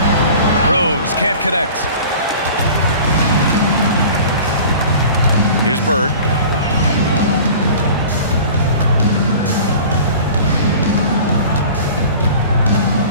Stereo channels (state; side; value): inverted; both; correlation -0.42